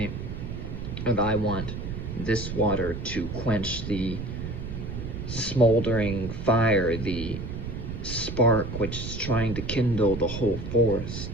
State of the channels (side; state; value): right; noise; rumble, 6 dB below the sound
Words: And I want this water to quench the smoldering fire, the spark which is trying to kindle the whole